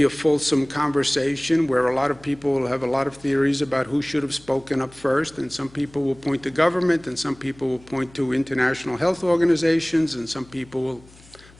a fulsome conversation where a lot of people will have a lot of theories about who should have spoken up first, and some people will point to government, and some people will point to international health organizations, and some people will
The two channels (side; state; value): left; noise; hum, 25 dB below the sound